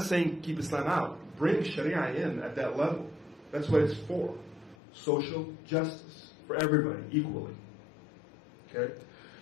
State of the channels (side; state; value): right; drops out; at 4.8 s